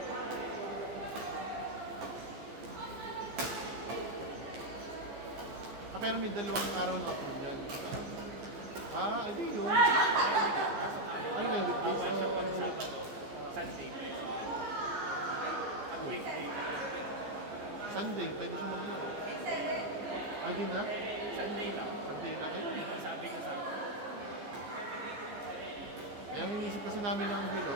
Pero may 2 araw na ako yan. Ano yun? Ano yun? Weekdays Bawal siya o... pag Sabado. Sunday pwede. Ang weekday. Sunday, pwede siya maglaro. Di na? Sunday lang. Sunday na kayo. Yan ang sabi niya sa akin. Kaya ang inisip kasi namin ng Hilo,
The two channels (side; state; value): left; late; 15 ms